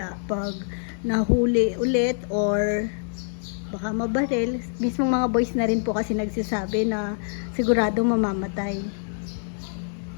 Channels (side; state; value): right; silent; 62 dB below the other